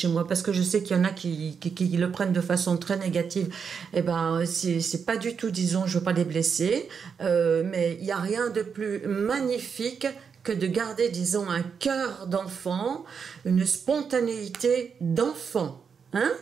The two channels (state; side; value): quieter; left; 6.3 dB